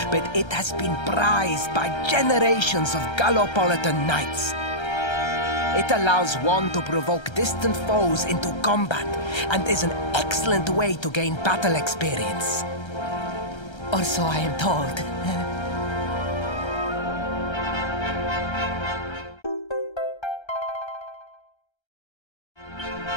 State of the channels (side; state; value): right; late; 1.3 ms